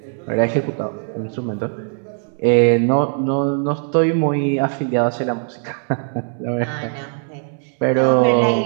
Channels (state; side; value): silent; left; 56 dB below the other